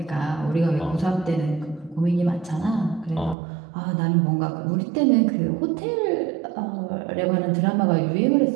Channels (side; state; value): left; drops out; at 3.4 s